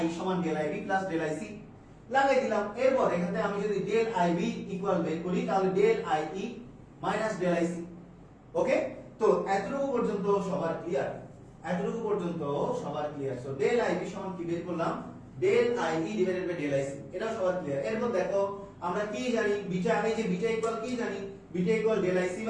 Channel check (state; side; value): identical; both; correlation 1.00